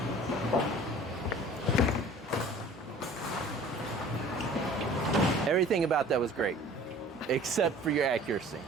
Everything about that was great, except for your accuracy.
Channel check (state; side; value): normal; both; correlation 0.47